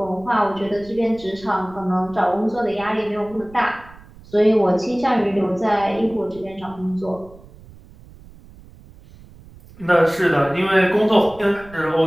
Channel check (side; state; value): right; noise; rumble, 22 dB below the sound